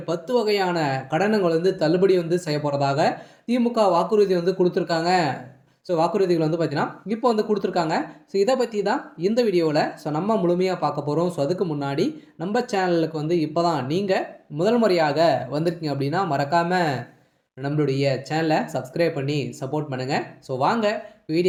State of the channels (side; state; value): both; identical; correlation 1.00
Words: 10 வகையான கடனுங்கள் வந்து தள்ளுபடி வந்து செய்யப்போறதாக திமுக வாக்குறுதி வந்து குடுத்துருக்காங்க. வாக்குறுதிகள் வந்து பார்த்தீங்கன்னா, இப்போ வந்து குடுத்துருக்காங்க. இத பத்தி தான் இந்த வீடியோல நம்ம முழுமையா பார்க்க போறோம். அதுக்கு முன்னாடி நம்ம சேனலுக்கு வந்து இப்ப தான் நீங்க முதல் முறையாக வந்திருக்கீங்க அப்படின்னா, மறக்காம நம்மளுடைய சேனலை சப்ஸ்கிரைப் பண்ணி சப்போர்ட் பண்ணுங்க. வாங்க